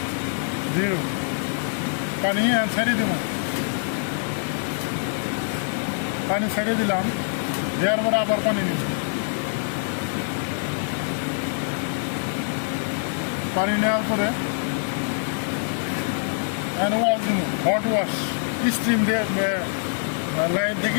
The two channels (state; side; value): silent; right; digital silence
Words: 0, পানি ছেড়ে দিব, পানি ছেড়ে দিলাম, দেওয়ার পরে আবার পানি নিব, পানি নেওয়ার পরে হ্যান্ড ওয়াশ দিব, হট ওয়াশ, স্টিম দিয়ে, লাইন থেকে